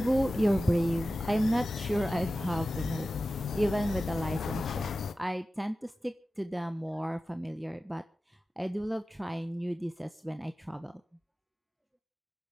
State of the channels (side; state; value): both; normal; correlation 0.95